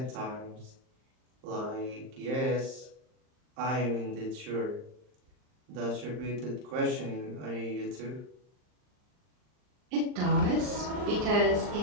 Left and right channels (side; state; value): left; late; 39 ms